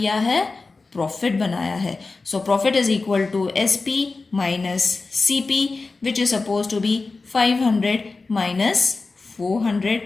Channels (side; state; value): right; quieter; 3.8 dB